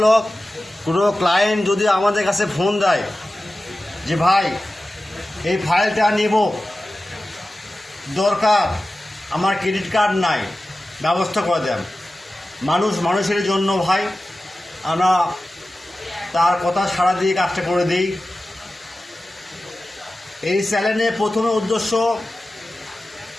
কোনো ক্লায়েন্ট যদি আমাদের কাছে ফোন দেয় যে ভাই এই ফাইলটা নিব, দরকার, আমার ক্রেডিট কার্ড নাই, ব্যবস্থা করে দেন। মানুষের জন্য ভাই আমরা তার কথা সাড়া দিয়ে কাজটা করে দিই। এই চ্যানেলে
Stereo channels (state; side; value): normal; both; correlation 0.95